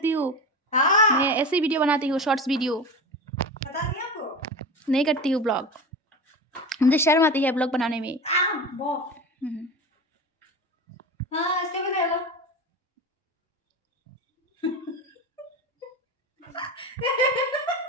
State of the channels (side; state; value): both; normal; correlation 0.27